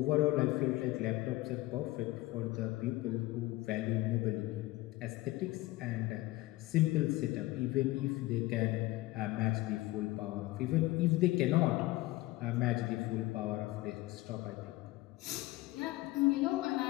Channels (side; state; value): right; quieter; 18.7 dB